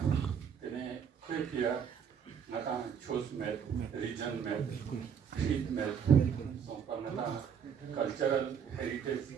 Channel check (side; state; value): left; quieter; 7.5 dB